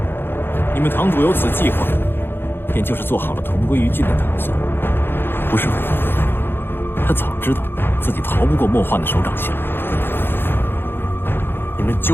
你们堂主有此计划，便就是做好了同归于尽的打算，不是吗？他早知道自己逃不过莫幻的手掌心。你们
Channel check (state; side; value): late; right; 0.10 ms